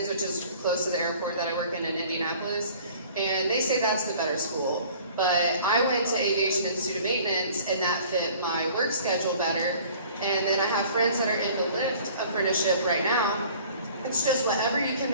which is close to the airport that I work in Indianapolis, and they say that's the better school. But I went to aviation and student maintenance, and that fit my work schedule better. And then I have friends that are in the lift apprenticeship right now. It's just whatever you can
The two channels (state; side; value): inverted; both; correlation -0.50